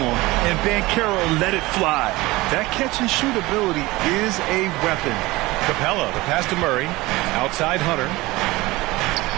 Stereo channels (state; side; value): quieter; left; 20.5 dB